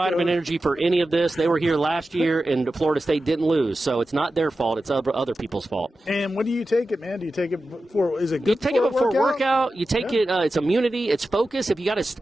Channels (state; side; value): normal; both; correlation 0.93